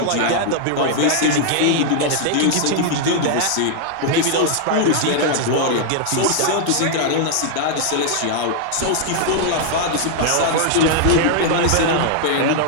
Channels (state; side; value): different; both; correlation 0.00